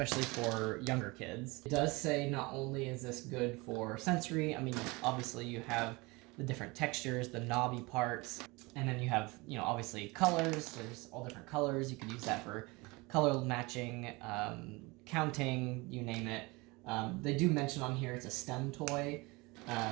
for younger kids. It does say not only is this good for sensory, I mean, obviously you have the different textures, the knobby parts, and then you have, you know, obviously colors. There's all different colors. You could use that for color matching, counting, you name it. They do mention on here it's a STEM toy.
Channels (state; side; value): quieter; left; 24.7 dB